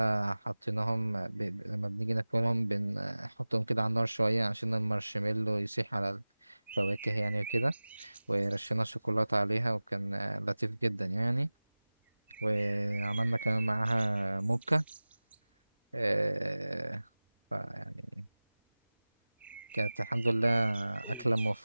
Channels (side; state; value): both; inverted; correlation -0.99